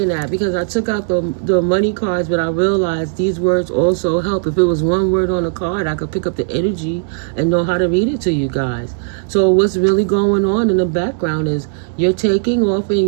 that, because I took out the money cards, but I realized these words also help. If it was one word on a card, I could pick up the energy and know how to read it to you guys. So what's really going on in the background is you're taking off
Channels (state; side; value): silent; left; 67 dB below the other